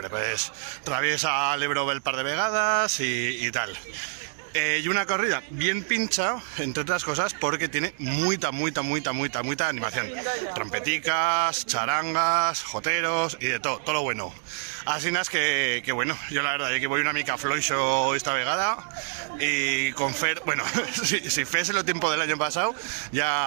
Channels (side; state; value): left; silent; digital silence